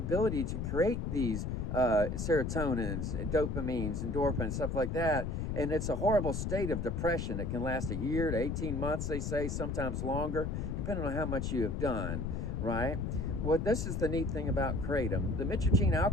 to create these serotonins, dopamines, endorphins, stuff like that. And it's a horrible state of depression. It can last a year to 18 months, they say, sometimes longer, depending on how much you have done, right? Well, this is the neat thing about kratom. The mitragine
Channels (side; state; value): left; noise; rumble, 2 dB below the sound